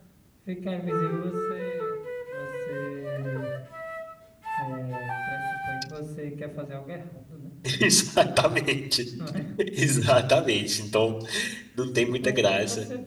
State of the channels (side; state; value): both; identical; correlation 1.00